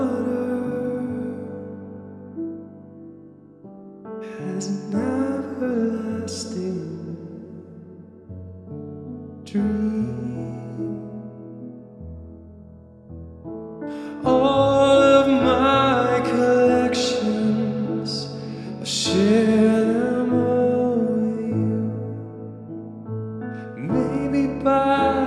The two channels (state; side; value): identical; both; correlation 1.00